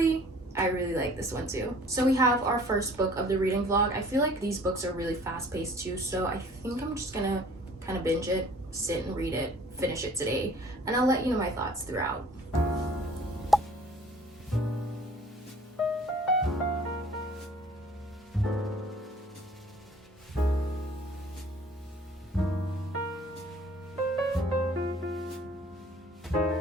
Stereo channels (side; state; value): both; normal; correlation 0.52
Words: I really like this one too. So we have our first book of the reading vlog. I feel like these books are really fast-paced too, so I think I'm just gonna kind of binge it, sit and read it, finish it today, and I'll let you know my thoughts throughout.